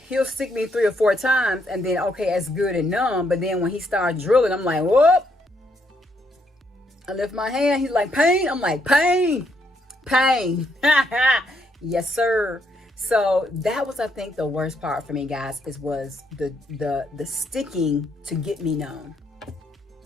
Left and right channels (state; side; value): normal; both; correlation 0.75